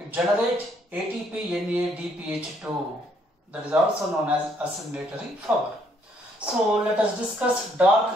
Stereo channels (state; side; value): normal; both; correlation 0.68